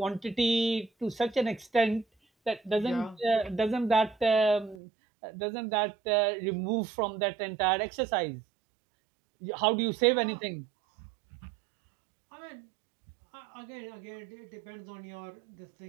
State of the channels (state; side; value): drops out; left; at 4.8 s